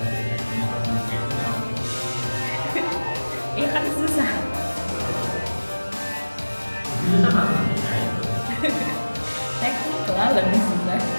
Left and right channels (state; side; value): inverted; both; correlation -1.00